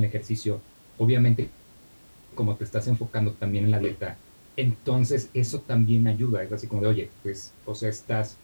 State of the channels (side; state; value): both; inverted; correlation -1.00